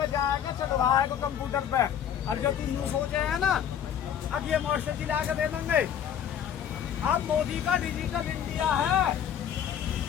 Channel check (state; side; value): quieter; right; 9.1 dB